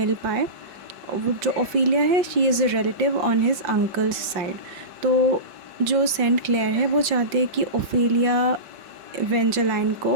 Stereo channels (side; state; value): left; late; 5.3 ms